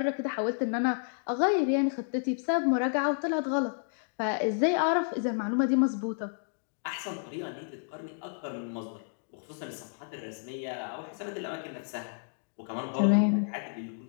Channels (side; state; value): right; silent; digital silence